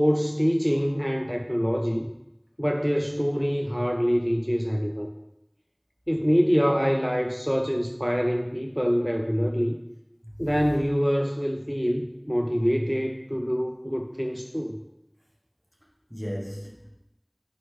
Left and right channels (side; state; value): both; identical; correlation 1.00